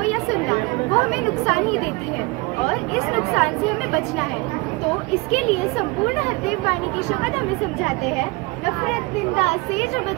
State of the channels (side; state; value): left; quieter; 25.1 dB